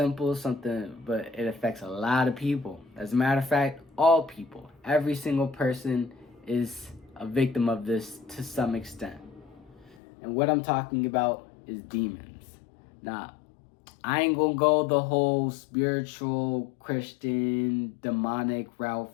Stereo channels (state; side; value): drops out; right; at 10.0 s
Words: but it affects a lot of people. As a matter of fact, all people, every single person is a victim of this to some extent. And what I'm talking about is demons. Now, I ain't gonna go the whole spiritual, Christian, demonic